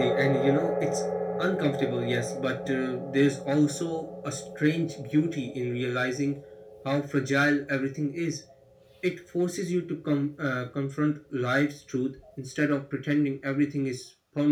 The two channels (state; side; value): identical; both; correlation 1.00